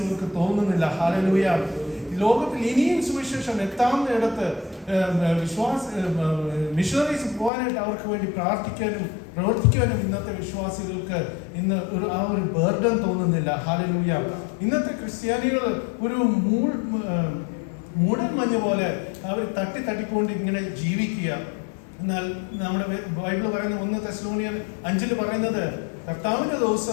തോന്നുന്നില്ല. ഹല്ലേലൂയ. ലോകത്തിൽ ഇനിയും സുവിശേഷം എത്താവുന്നിടത്ത് മിഷണറീസ് പോകാനായിട്ട് അവർക്ക് വേണ്ടി പ്രാർത്ഥിക്കാനും പ്രവർത്തിക്കാനും ഇന്നത്തെ വിശ്വാസികൾക്ക് ഇന്ന് ആ ഒരു ബർഡൻ തോന്നുന്നില്ല. ഹല്ലേലൂയ. ഇന്നത്തെ ക്രിസ്ത്യാനികൾ ഒരു മൂടൽ മഞ്ഞ് പോലെ അവർ തട്ടിക്കൊണ്ട് ഇങ്ങനെ ജീവിക്കുക. എന്നാൽ നമ്മുടെ ബൈബിൾ പറയുന്ന 1 തെസ്സലോനിയർ 5 പറയുന്നത് കർത്താവിന്റെ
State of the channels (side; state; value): right; drops out; at 7.5 s